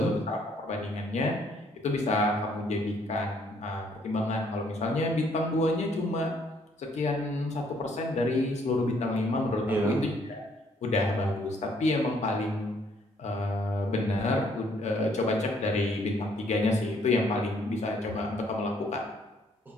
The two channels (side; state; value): both; normal; correlation 0.66